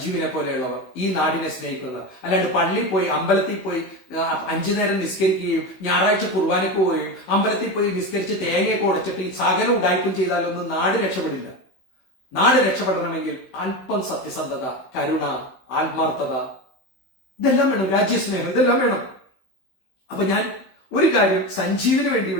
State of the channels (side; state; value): right; late; 16 ms